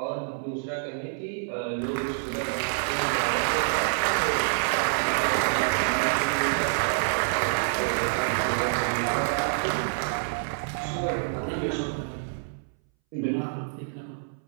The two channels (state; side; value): silent; left; 60 dB below the other